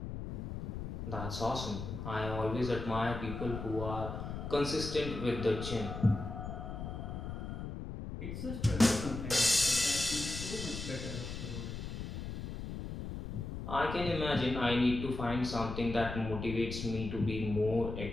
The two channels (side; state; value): left; noise; rumble, 6 dB below the sound